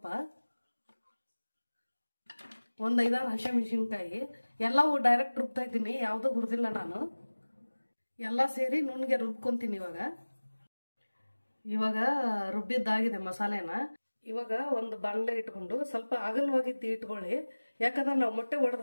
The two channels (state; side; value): inverted; both; correlation -1.00